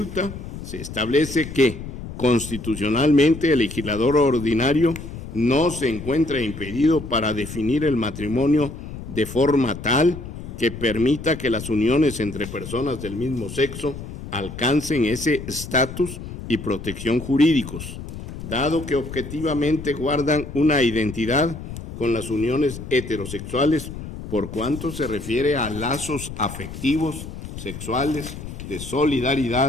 se establece que, constitucionalmente, el legislador ordinario no se encuentra impedido para definir el matrimonio de forma tal que permita que las uniones entre personas del mismo sexo alcancen ese estatus y protección jurídicos, dado que objetivamente guardan una identidad con las uniones heterosexuales por cuanto se refiere a lazos afectivos, sexuales, de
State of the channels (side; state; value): left; noise; rumble, 10 dB below the sound